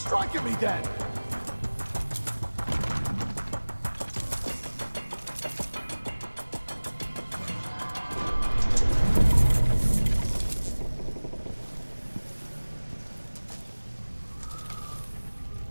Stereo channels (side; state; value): both; inverted; correlation -1.00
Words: at me then!